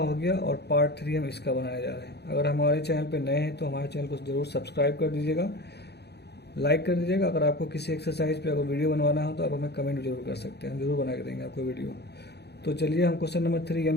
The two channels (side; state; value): right; late; 0.48 ms